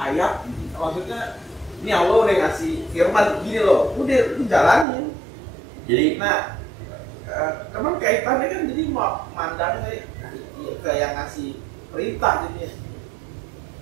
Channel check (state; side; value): drops out; left; at 4.9 s